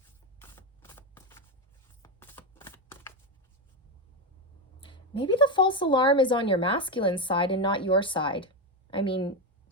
Maybe the false alarm is on your masculine side and not your side. I mean,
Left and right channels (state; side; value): normal; both; correlation 0.10